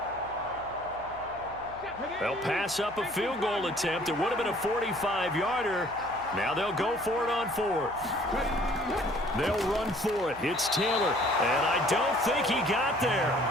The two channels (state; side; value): noise; right; hum, 20 dB below the sound